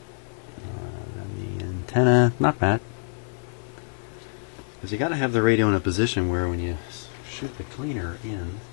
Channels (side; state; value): right; silent; digital silence